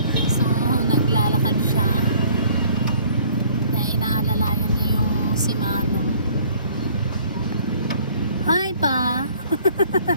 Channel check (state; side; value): inverted; both; correlation -0.56